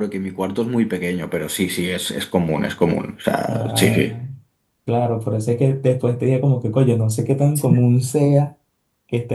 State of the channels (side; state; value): both; identical; correlation 1.00